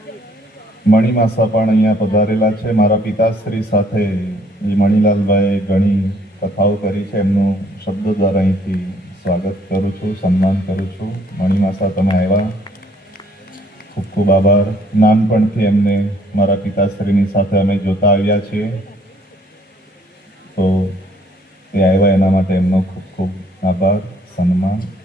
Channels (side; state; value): both; normal; correlation 0.63